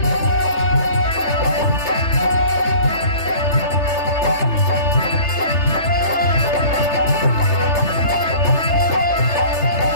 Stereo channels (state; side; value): late; right; 3.3 ms